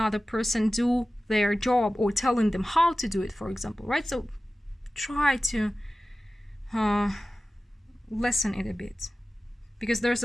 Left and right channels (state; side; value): normal; both; correlation 0.96